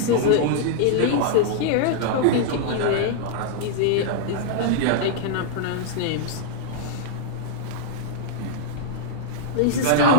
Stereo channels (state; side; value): different; both; correlation -0.02